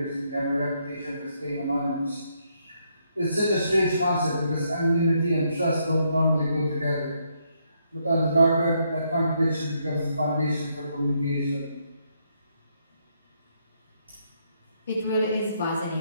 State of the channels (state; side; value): inverted; both; correlation -0.75